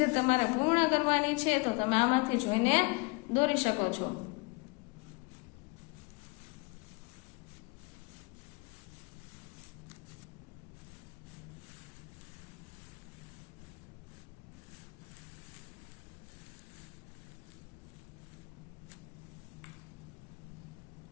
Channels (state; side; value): quieter; right; 27.7 dB